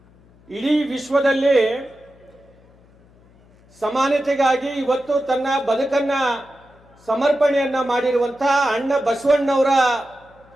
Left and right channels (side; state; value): left; noise; hum, 29 dB below the sound